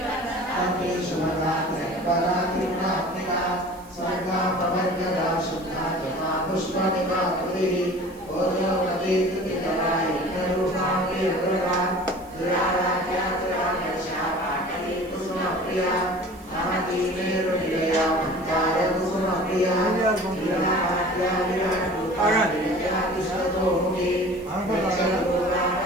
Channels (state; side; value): noise; right; hiss, 25 dB below the sound